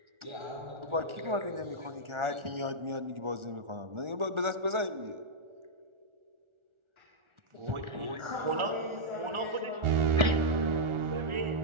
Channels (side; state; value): left; late; 1.4 ms